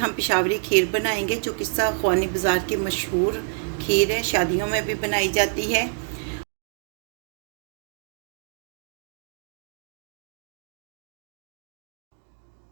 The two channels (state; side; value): silent; left; 60 dB below the other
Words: पेशावरी खीर बनाएंगे जो किस्सा ख्वानी बाज़ार की मशहूर खीर है, शादियों में भी बनाई जाती है।